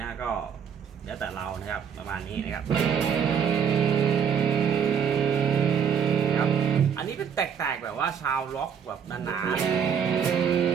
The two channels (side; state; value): left; quieter; 7.5 dB